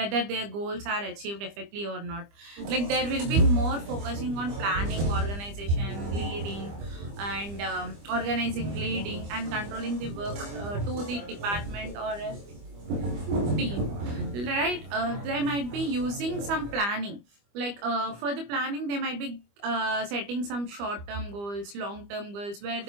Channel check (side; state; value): left; late; 25 ms